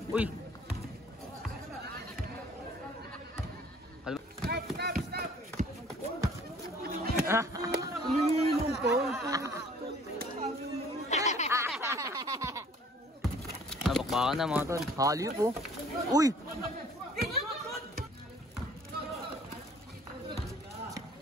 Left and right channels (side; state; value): both; normal; correlation 0.54